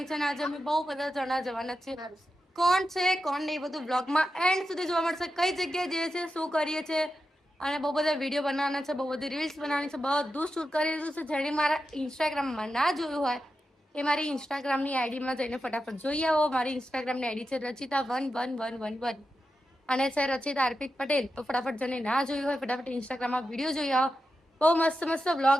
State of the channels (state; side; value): normal; both; correlation 0.89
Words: છે અને આજે અમે બહુ બધા જણા જવાના છે. કોણ છે કોણ નહીં બધું બ્લોગમાં એન્ડ સુધી જોવા મળશે. કઈ જગ્યાએ જઈએ છે, શું કરીએ છીએ અને બહુ બધા વિડીયો બનાવવાના છે, બહુ બધી રીલ્સ બનાવવાની છે, બધું શૂટ કરી દીધું છે. જેણે મારા ઇન્સ્ટાગ્રામમાં ના જોયું હોય એ મારી ઇન્સ્ટાગ્રામની આઈડીમાં જઈને ફટાફટ જોઈ આવો. મારી ઇન્સ્ટાગ્રામની આઈડી છે રચિતા111111 અને છે રચિતા અર્પિત પટેલ. તો ફટાફટ જેને ના જોયું હોય ફટાફટ ઇન્સ્ટાગ્રામમાં વિડીયો જોઈ આવો. બહુ મસ્ત મસ્ત વ્લોગ